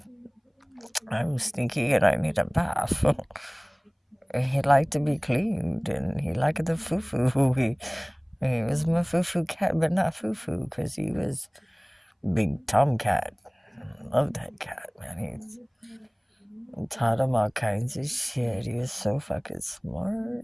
I'm stinky and I need a bath. He liked to be cleaned and he liked the foo-foo. He was my foo-foo cat, but not foo-foo, because he was big tomcat. Love that cat, man. He's taught him all kinds of shit. He was so fucking smart.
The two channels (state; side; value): identical; both; correlation 1.00